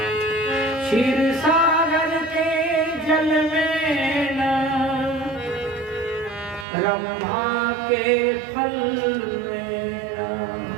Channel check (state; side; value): drops out; left; at 6.7 s